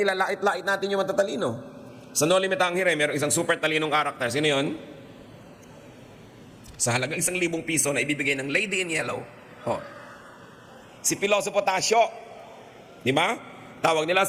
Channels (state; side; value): identical; both; correlation 1.00